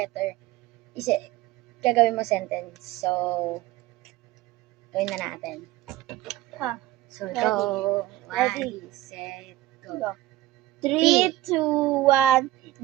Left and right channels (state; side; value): quieter; left; 16.2 dB